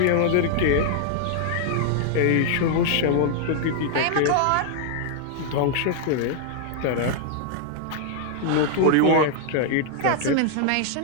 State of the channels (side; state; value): both; different; correlation -0.01